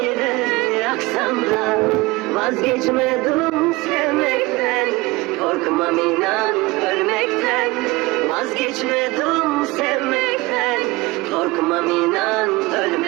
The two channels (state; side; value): quieter; left; 22.3 dB